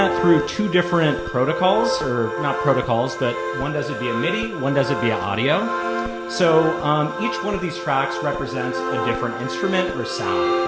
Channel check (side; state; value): both; identical; correlation 1.00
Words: through two different protocols, or not protocols, but one does it via MIDI, one does it via audio. So each one of these tracks represents a different instrument or